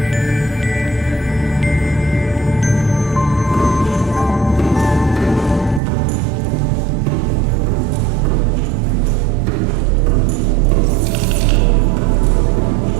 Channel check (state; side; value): drops out; left; at 5.8 s